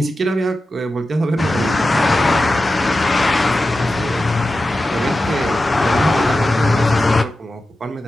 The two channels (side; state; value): both; normal; correlation 0.92